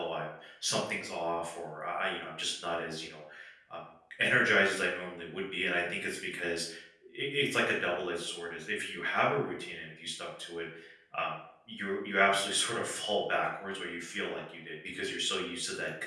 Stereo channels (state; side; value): identical; both; correlation 1.00